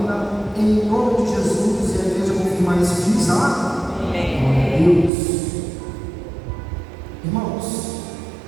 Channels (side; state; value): left; drops out; at 5.1 s